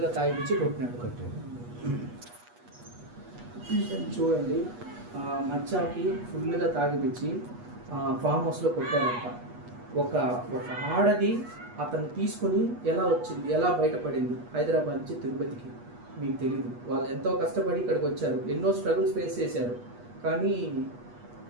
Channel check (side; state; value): left; late; 8.3 ms